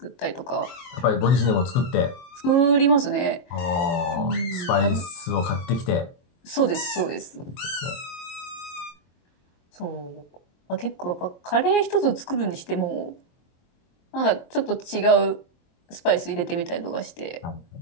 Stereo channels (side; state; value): right; late; 23 ms